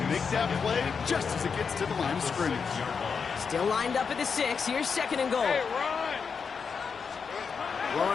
make that play just as it gets to the line of scrimmage. Still lined up at the 6. Here's second and goal.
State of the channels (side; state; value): right; quieter; 5.8 dB